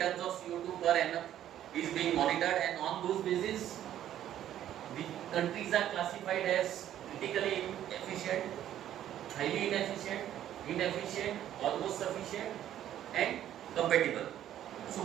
of CO2 per annum is being monitored, and on those basis the countries are classified as critically inefficient, highly inefficient, almost sufficient and compatible.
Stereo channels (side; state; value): left; quieter; 11.5 dB